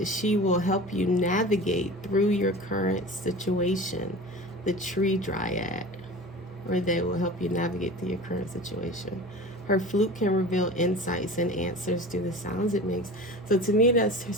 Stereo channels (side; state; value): both; normal; correlation 0.35